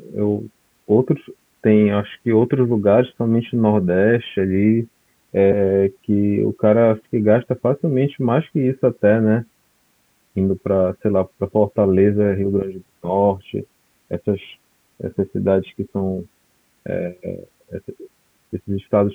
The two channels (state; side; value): identical; both; correlation 1.00